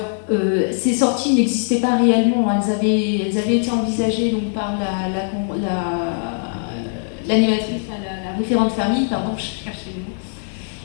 ces sorties n'existaient pas réellement. Elles avaient été envisagées donc, par l'animatrice, la référente famille, pardon, je cherchais le mot.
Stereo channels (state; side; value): silent; right; digital silence